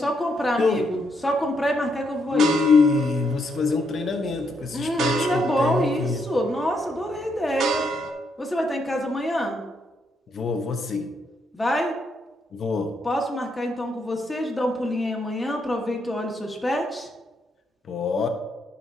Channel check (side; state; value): both; normal; correlation 0.77